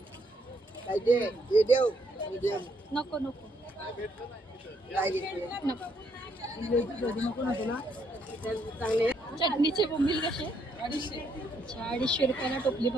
नको नको चटणीचे बोंबील कसे? 250 अच्छा 250 रुपयाला टोपली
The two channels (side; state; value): both; normal; correlation 0.72